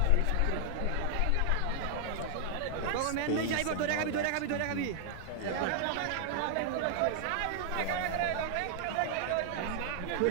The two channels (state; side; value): different; both; correlation 0.00